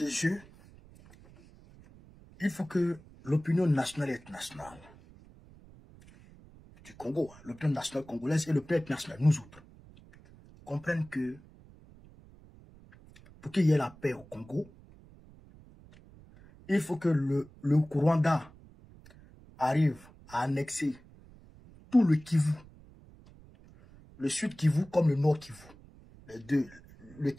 jeu, il faut que l'opinion nationale et internationale du Congo, l'opinion nationale congolaise et l'opinion internationale, nous autres, comprennent que pour qu'il y ait la paix au Congo, il faut que le Rwanda arrive à annexer tout le Kivu, le Sud Kivu comme le Nord Kivu, les deux, le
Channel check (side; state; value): right; noise; rumble, 23 dB below the sound